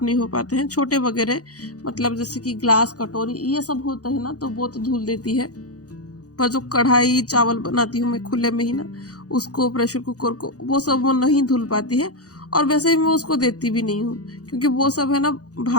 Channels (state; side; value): late; right; 0.67 ms